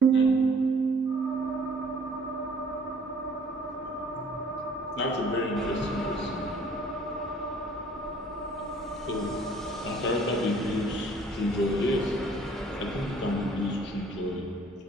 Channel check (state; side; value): normal; both; correlation 0.55